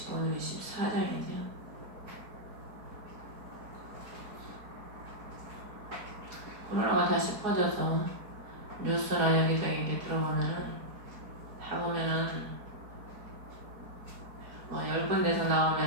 오늘이 14장이죠. 코로나가 다시 퍼져서 뉴스나 여기저기 이렇게 들어보면은 다 보면은 뭐 10군데서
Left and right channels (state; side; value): late; left; 4.8 ms